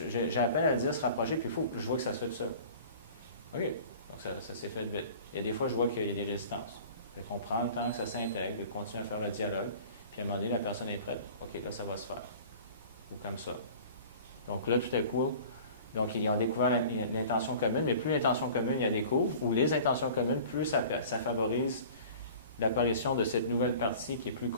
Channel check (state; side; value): inverted; both; correlation -0.43